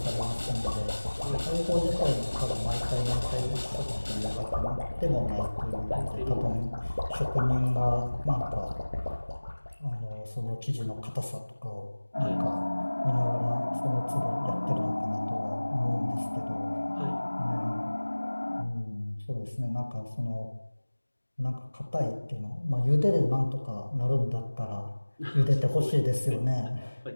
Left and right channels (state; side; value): inverted; both; correlation -1.00